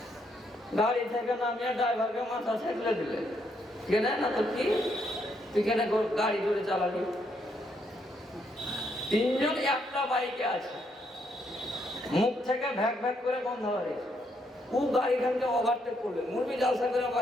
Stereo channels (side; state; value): both; normal; correlation 0.75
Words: গাড়ি থেকে নামিয়ে ড্রাইভারকে মাথা ছেঁকলে দিলে, কেনে না তো কি তুই কেন গাড়ি ধরে চালাবি? 3 জন একটা বাইকে আছে, মুখ থেকে ভ্যাক ভ্যাক করে বন্ধ হয়েছে, ও গাড়িখানকে ওভারটেক করবে, মুরবি জালসা করে